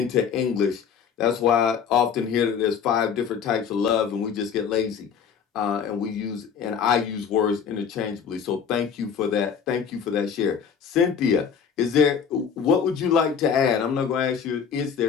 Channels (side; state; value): right; quieter; 7.1 dB